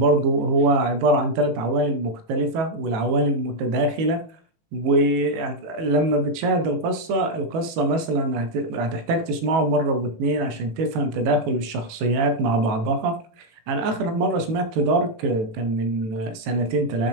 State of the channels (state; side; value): late; left; 19 ms